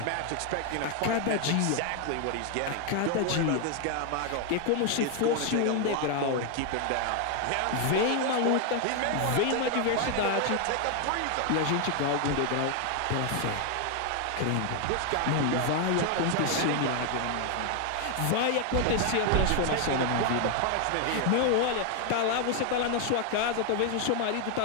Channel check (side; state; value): both; different; correlation 0.00